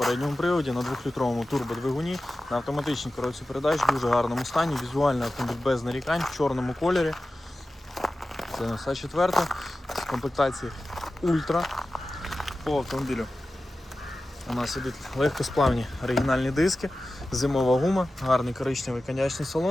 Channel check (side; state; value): both; normal; correlation 0.95